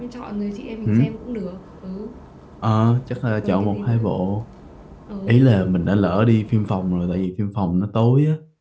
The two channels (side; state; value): both; identical; correlation 1.00